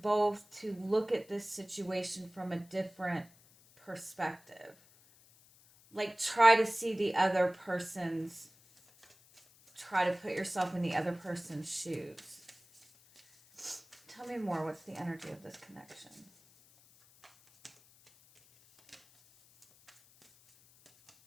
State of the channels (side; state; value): left; noise; hiss, 27 dB below the sound